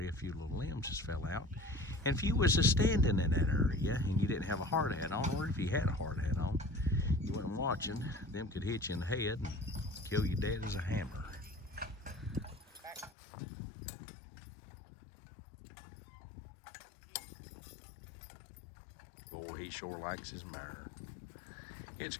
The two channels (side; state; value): right; drops out; at 13.1 s